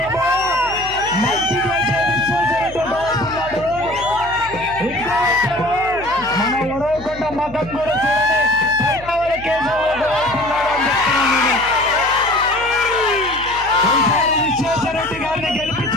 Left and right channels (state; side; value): noise; left; hum, 17 dB below the sound